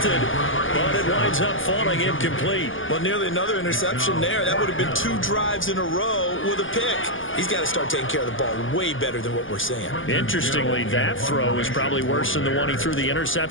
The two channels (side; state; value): right; late; 0.58 ms